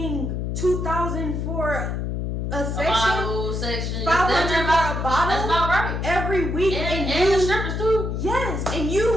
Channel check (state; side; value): noise; left; hum, 2 dB below the sound